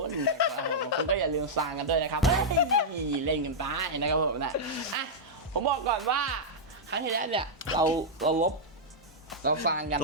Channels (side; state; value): both; normal; correlation -0.07